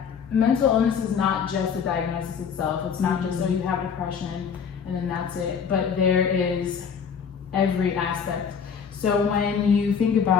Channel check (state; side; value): quieter; right; 6.8 dB